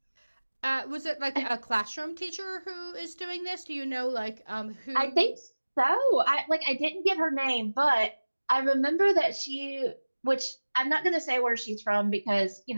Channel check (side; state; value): both; inverted; correlation -1.00